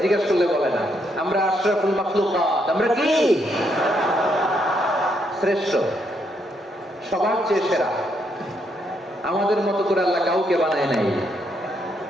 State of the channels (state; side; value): normal; both; correlation 0.76